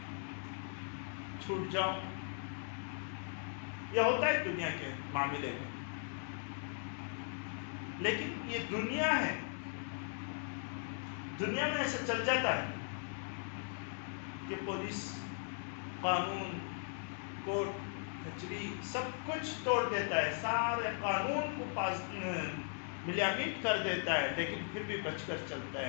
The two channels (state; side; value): silent; right; 52 dB below the other